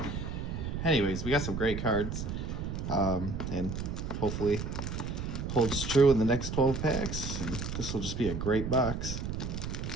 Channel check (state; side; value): noise; right; rumble, 4 dB below the sound